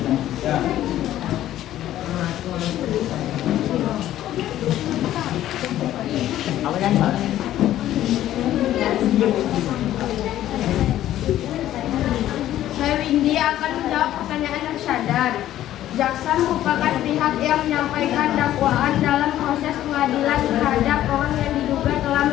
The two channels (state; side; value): quieter; right; 13.0 dB